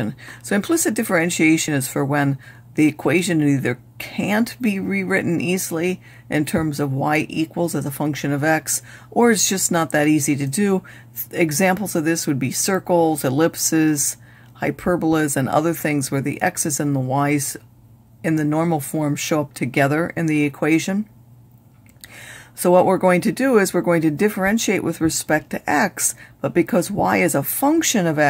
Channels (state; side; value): identical; both; correlation 1.00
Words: So implicit differentiation is for when the equation either can't be rewritten easily in terms of y equals as a function of x, or it's just not that easy to do. Examples of this would be circles, ellipses, hyperbolas, and other things where the x's and the y's in the normal form show up together in the equation. So what we're going to do is we're going to differentiate with respect to x, but because y is a function of